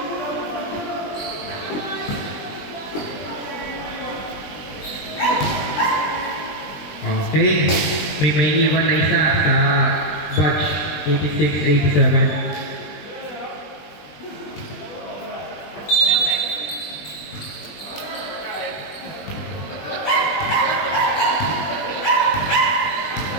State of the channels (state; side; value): late; right; 20 ms